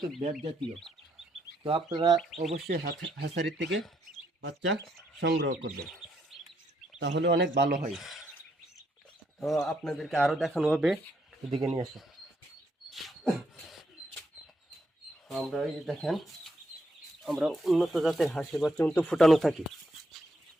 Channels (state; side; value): normal; both; correlation 0.75